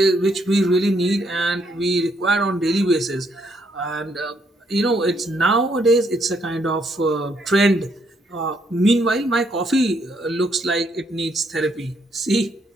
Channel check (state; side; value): normal; both; correlation 0.73